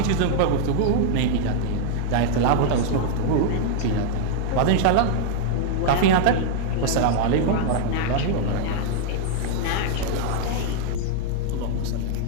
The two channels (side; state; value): both; different; correlation 0.00